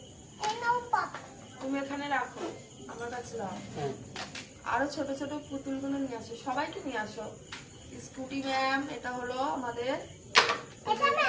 তুমি এখানে রাখো, আমার কাছে দাও। আরো ছোট ছোট পুতুলগুলো নিয়ে আসো, সবাইকে নিয়ে আসো। স্কুটি ম্যাম, এটা হলো আমাদের,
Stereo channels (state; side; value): identical; both; correlation 1.00